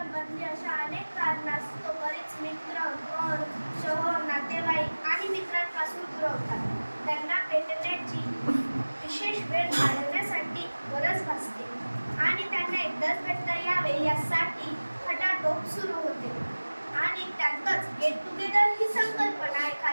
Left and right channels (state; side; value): inverted; both; correlation -1.00